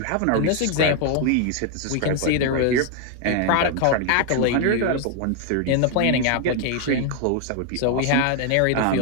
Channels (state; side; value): different; both; correlation 0.00